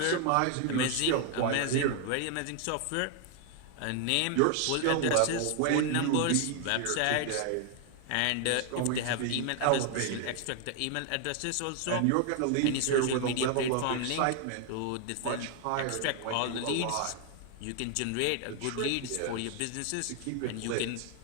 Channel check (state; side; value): different; both; correlation 0.00